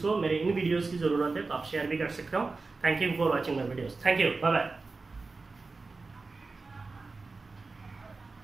मेरे इन वीडियोज़ की ज़रूरत है तो आप शेयर भी कर सकते हो। Thank you for watching my videos. Thank you, bye bye.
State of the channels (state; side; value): quieter; left; 3.9 dB